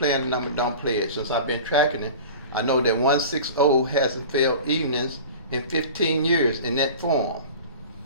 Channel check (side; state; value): both; inverted; correlation -0.37